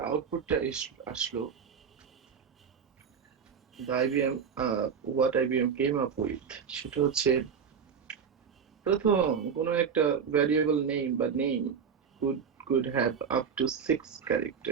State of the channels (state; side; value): quieter; left; 6.8 dB